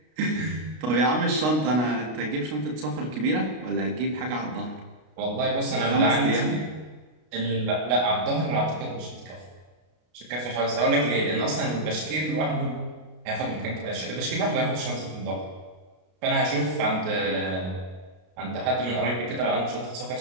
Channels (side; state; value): left; late; 33 ms